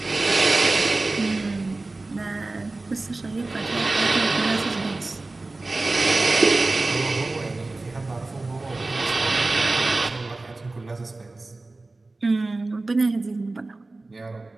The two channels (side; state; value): left; quieter; 3.2 dB